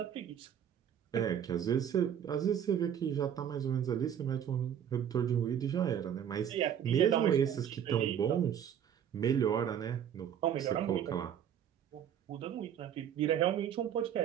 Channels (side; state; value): left; quieter; 9.2 dB